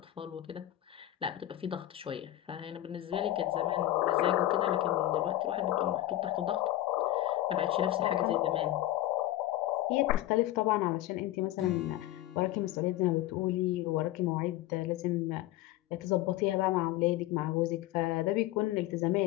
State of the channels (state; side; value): quieter; right; 14.8 dB